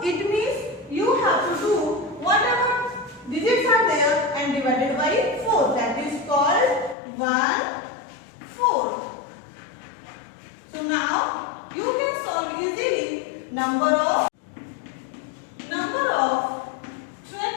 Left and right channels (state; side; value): drops out; right; at 7.0 s